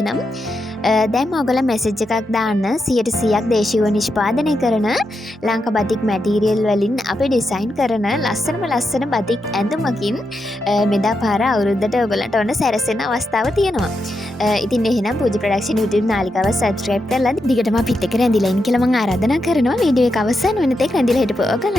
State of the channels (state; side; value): normal; both; correlation 0.85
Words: දැන් ඕගොල්ලන් මැසේජ් එකක් දාන්න 100%ක් දේශීයව නිෂ්පාදනය කරන ලංකා බතික් මැටීරියල් වලින් අපි ඩිසයින් කරන ලස්සන බතික් ඇඳුමකින් මෙදා පාර අවුරුද්දට ඔයගලන්ට ඔන්න සැරසෙන අවස්ථාව තියෙනවා. ඉතින් එහෙනම් පූජා ප්‍රොඩක්ෂන් YouTube නාලිකාව subscribe කරලා දිගටම අපිත් එක්ක රැඳිලා ඉන්න කියලා මම ආරාධනා කරනවා. වීඩියෝ එක අවසන් වෙන තෙක් රැඳිලා හිටපුවා